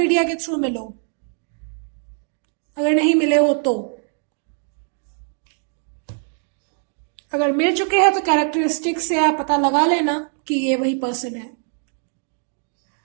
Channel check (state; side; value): silent; left; 55 dB below the other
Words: के थ्रू मिलो, अगर नहीं मिले हो तो. अगर मिल चुके हैं तो कैरेक्टरिस्टिक से आप पता लगा लेना कि ये वही पर्सन है।